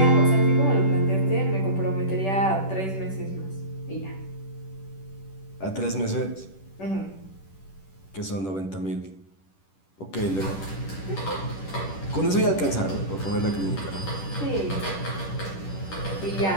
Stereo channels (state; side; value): late; right; 10 ms